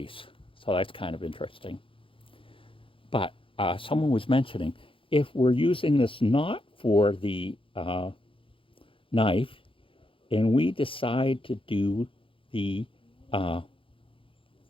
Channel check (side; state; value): right; late; 0.25 ms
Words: So that's kind of interesting. But someone was mentioning, if we're using this not for the knife, and we decide to do the